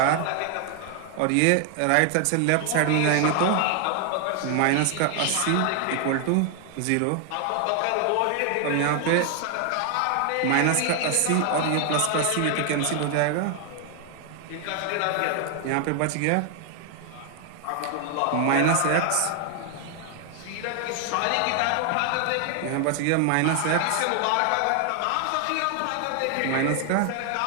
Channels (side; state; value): both; different; correlation 0.00